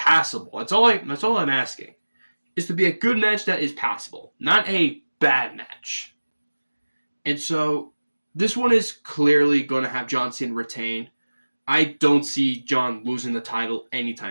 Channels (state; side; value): inverted; both; correlation -1.00